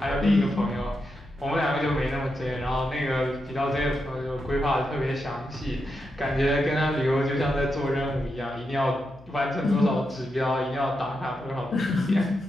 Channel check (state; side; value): noise; left; hum, 23 dB below the sound